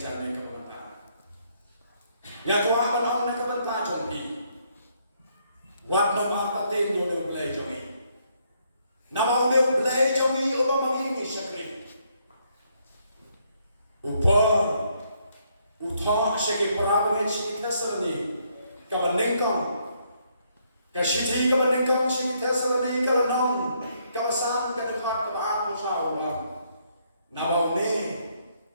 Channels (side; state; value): both; inverted; correlation -0.72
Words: cara Ya tua banong na kabanta jompi. Wat na mapating yo ne blay jomi. Namaw ne blay jomi uba mangingi syakri. Upa utha syaki parabangit syaki tasalani kabanengkong. Kashiti kabanengkong syaki tasalani kalanong kabasan kadakot kabaat mo sa ulam. Namaw ne